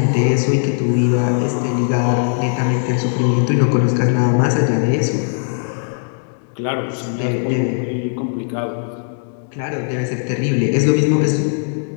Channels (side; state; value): right; silent; digital silence